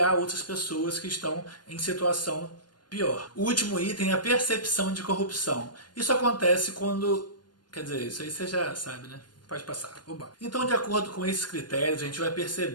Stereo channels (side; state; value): right; late; 0.71 ms